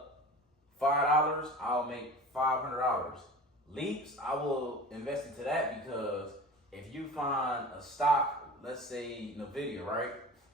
$5, I'll make $500. Leaps, I will invest into that, because if you find a stock, let's say NVIDIA, right?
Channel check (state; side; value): normal; both; correlation 0.37